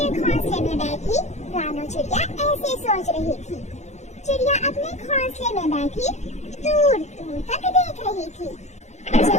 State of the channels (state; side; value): late; right; 0.33 ms